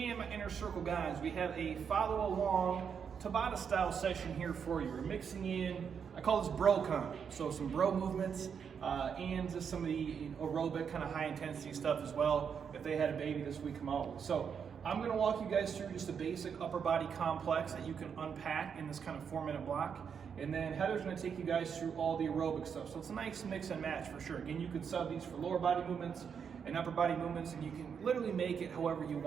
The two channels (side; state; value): left; quieter; 7.0 dB